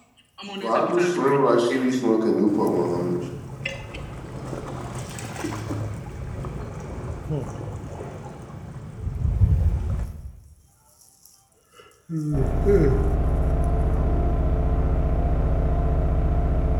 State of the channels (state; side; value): identical; both; correlation 1.00